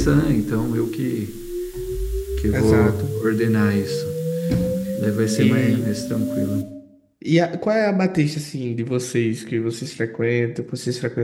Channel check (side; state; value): both; identical; correlation 1.00